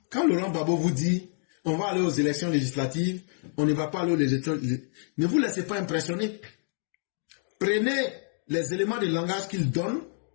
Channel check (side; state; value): right; silent; 56 dB below the other